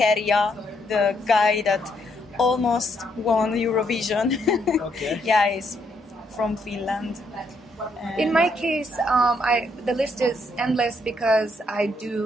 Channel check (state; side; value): normal; both; correlation 0.74